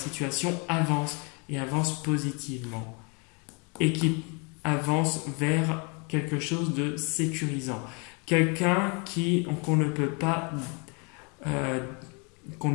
avance positivement et qui avance vers quelque chose de sécurisant. Quelqu'un qu'on ne peut pas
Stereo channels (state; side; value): quieter; right; 33.1 dB